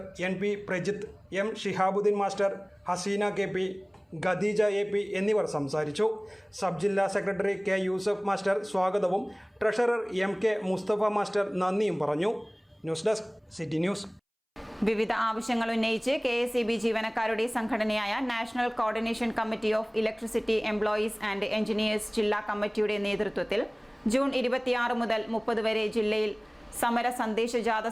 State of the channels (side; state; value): both; identical; correlation 1.00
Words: NP Prajith, M Shihabuddeen master, Haseena KP, Khadeeja AP എന്നിവർ സംസാരിച്ചു. സബ് ജില്ലാ സെക്രട്ടറി K യൂസഫ് മാസ്റ്റർ സ്വാഗതവും ട്രഷറർ MK മുസ്തഫ മാസ്റ്റർ നന്ദിയും പറഞ്ഞു. News desk city news. വിവിധ ആവശ്യങ്ങൾ ഉന്നയിച്ച് KSEB ജീവനക്കാരുടെ സംഘടനയായ national coordination committee of electricity employees and engineers ജില്ലാ കമ്മിറ്റിയുടെ നേതൃത്വത്തിൽ ജൂൺ 26 മുതൽ 30 വരെ ജില്ലയിൽ സമര സന്ദേശ ജാഥ